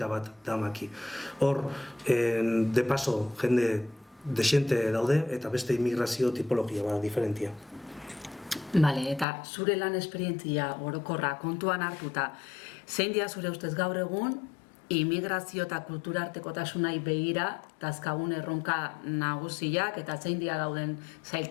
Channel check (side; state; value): right; drops out; at 9.2 s